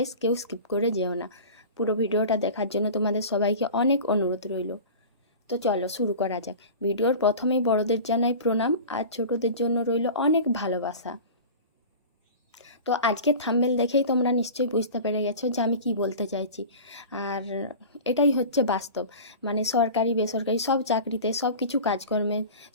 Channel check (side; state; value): both; inverted; correlation -0.35